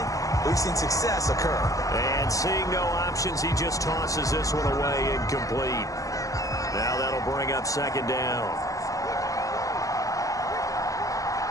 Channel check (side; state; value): right; late; 0.16 ms